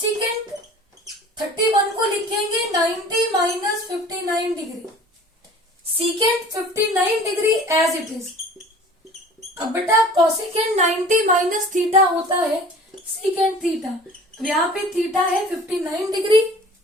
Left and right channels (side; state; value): both; normal; correlation 0.45